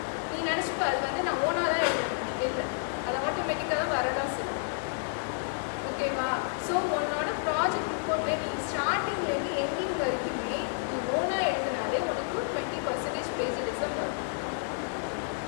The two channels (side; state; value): right; silent; digital silence